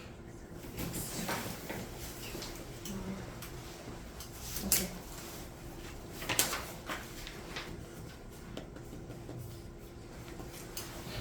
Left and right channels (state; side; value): identical; both; correlation 1.00